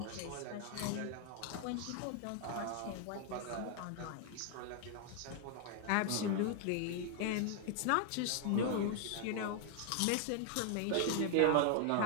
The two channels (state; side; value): different; both; correlation 0.00